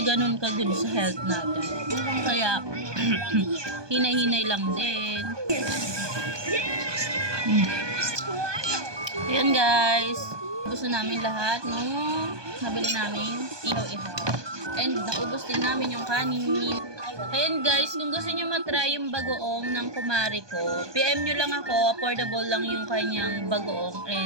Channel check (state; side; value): late; left; 1.2 ms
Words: ganun ka-good sa health natin. Kaya, hinay-hinay lang din. Ayan guys. Gusto namin lahat nung nabili namin ihaw-ihaw. And naubos din namin yung kanin. Ayan guys, kung gusto nyo matry yung bagoong ng kumari ko, PM nyo lang ako, affordable lang yung kanyang bagoong.